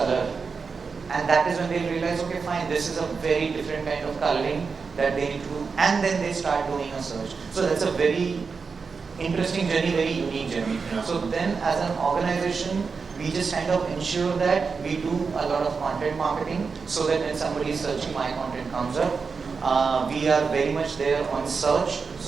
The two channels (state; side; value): quieter; left; 5.1 dB